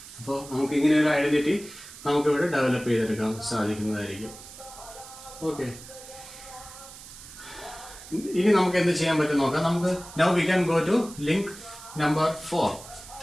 അപ്പോൾ നമുക്ക് ഇങ്ങനെ ഒരു ഐഡന്റിറ്റി നമുക്ക് ഇവിടെ ഡെവലപ്പ് ചെയ്തെടുക്കാൻ സാധിക്കുന്നതായിരിക്കും. ഓക്കെ, ഇനി നമുക്ക് എന്ത് ചെയ്യാൻ പറ്റും നോക്കാം. നമുക്ക് now we can go to link number 4.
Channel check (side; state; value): right; noise; hiss, 16 dB below the sound